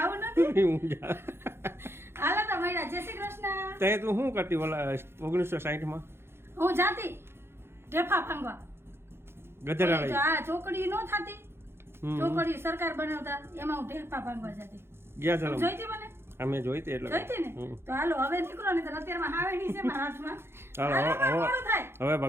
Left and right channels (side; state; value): left; late; 0.12 ms